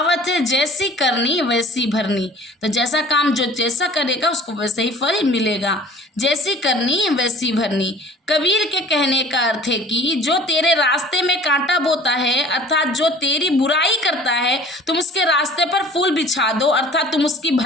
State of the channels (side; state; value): both; normal; correlation 0.48